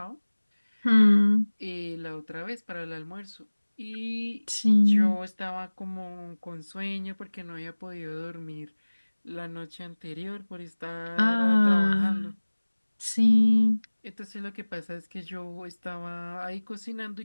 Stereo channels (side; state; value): both; inverted; correlation -1.00